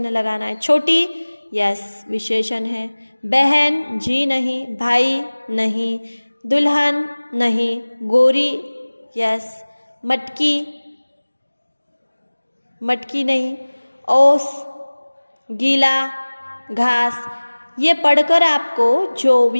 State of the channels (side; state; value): both; inverted; correlation -1.00